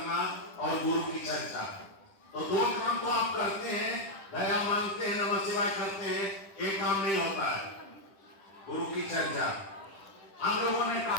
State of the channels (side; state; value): right; late; 10 ms